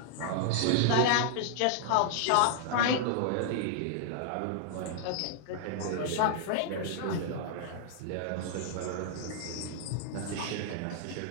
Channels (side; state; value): both; different; correlation 0.00